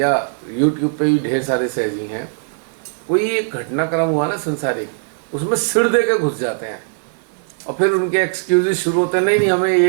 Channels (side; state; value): left; silent; 60 dB below the other